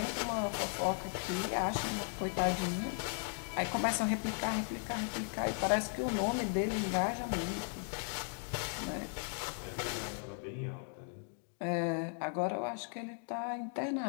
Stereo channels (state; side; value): silent; right; 53 dB below the other